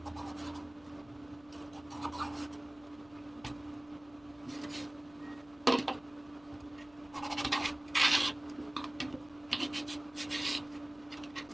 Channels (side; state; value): left; noise; hum, 25 dB below the sound